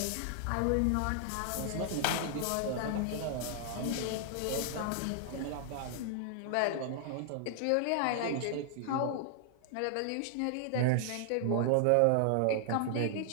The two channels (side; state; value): both; different; correlation -0.01